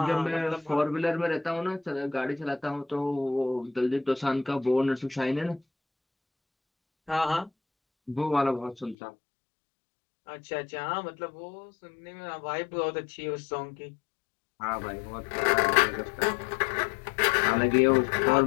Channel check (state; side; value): drops out; right; at 9.0 s